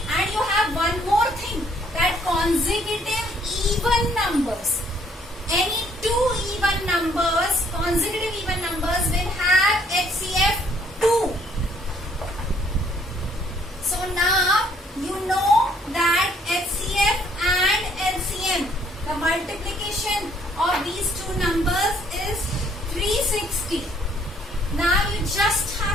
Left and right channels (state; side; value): normal; both; correlation 0.64